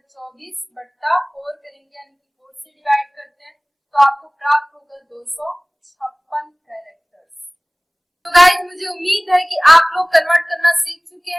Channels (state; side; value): identical; both; correlation 1.00